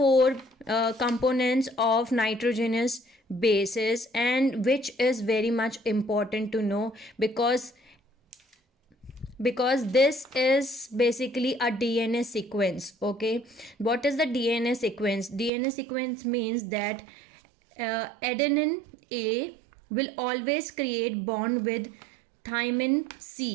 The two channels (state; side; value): drops out; left; at 15.5 s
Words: components of nitrogenous bases, and which is very much important to know, because this is basically a DNA sequence. Okay, what is the DNA sequence? DNA sequence means that adenine A will always create bond with thymine